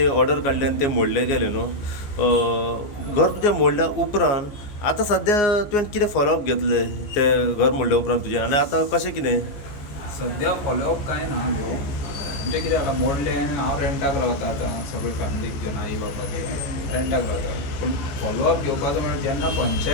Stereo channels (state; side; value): late; right; 14 ms